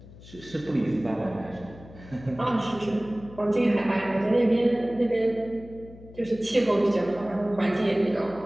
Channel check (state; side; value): noise; left; hum, 19 dB below the sound